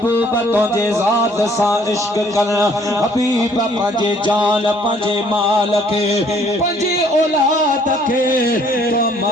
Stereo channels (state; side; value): normal; both; correlation 0.61